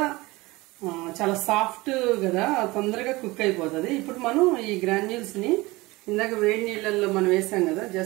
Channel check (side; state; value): left; quieter; 21.6 dB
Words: చాలా సాఫ్ట్ కదా, తొందరగా కుక్ అయిపోతుంది. ఇప్పుడు మనం ఈ గ్రాన్యూల్స్ని ఇందాక వేడి నీళ్ళల్లో మనం వేసాం కదా,